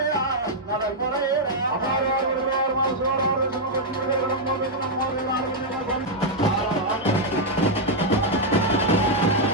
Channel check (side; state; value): both; normal; correlation -0.02